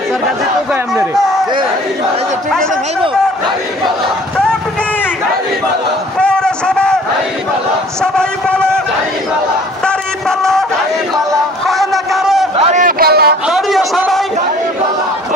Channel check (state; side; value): normal; both; correlation 0.50